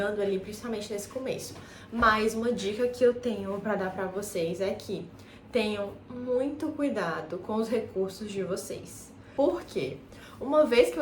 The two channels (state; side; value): identical; both; correlation 1.00